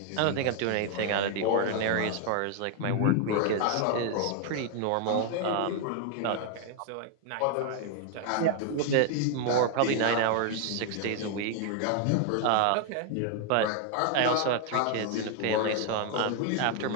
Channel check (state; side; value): different; both; correlation 0.00